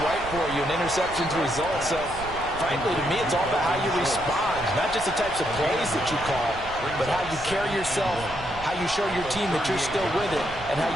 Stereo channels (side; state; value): right; noise; rumble, 14 dB below the sound